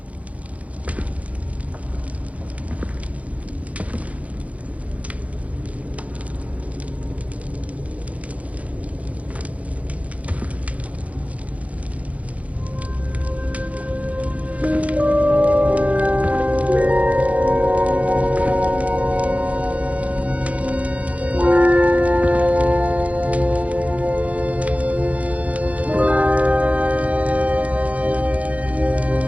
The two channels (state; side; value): late; left; 0.066 ms